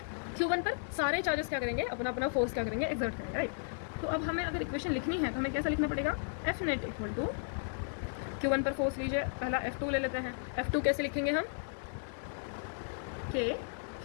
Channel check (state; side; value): silent; right; digital silence